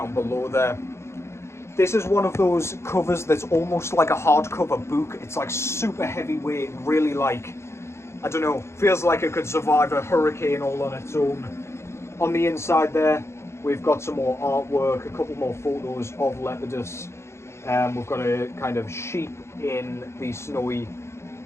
below there. This is one of those covers that's almost like a hardcover book. It's like super heavyweight, really like, I don't know, feels like it could survive a hurricane all on its own. On the inside there, we've got some more artwork, a couple more photos of Lepidus. We've got a kind of sheep in the snowy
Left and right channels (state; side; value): late; right; 0.13 ms